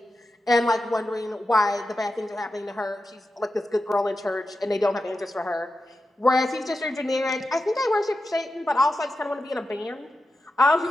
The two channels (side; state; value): both; normal; correlation 0.90